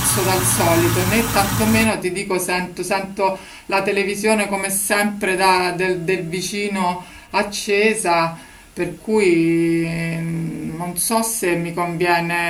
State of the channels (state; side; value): identical; both; correlation 1.00